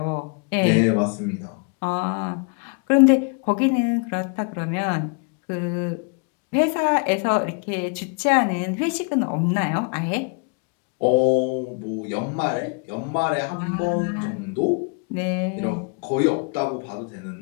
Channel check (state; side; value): quieter; right; 36.5 dB